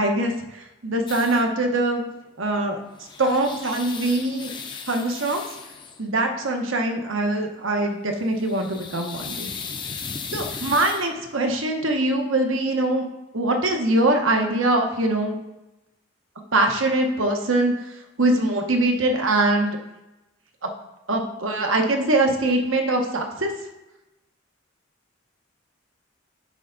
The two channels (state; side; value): normal; both; correlation 0.25